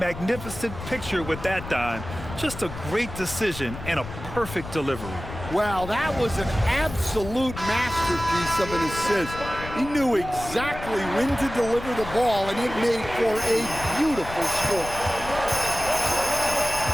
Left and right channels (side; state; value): left; noise; rumble, 11 dB below the sound